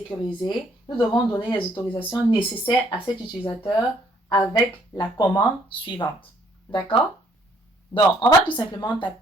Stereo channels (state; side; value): normal; both; correlation 0.65